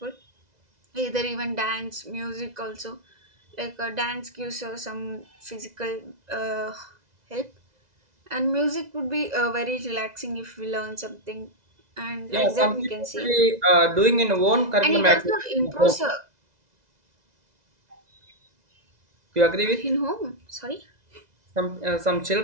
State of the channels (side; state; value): left; late; 2.0 ms